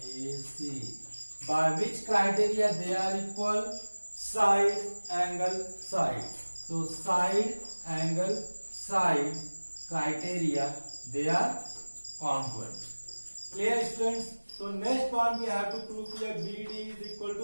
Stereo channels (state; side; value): inverted; both; correlation -1.00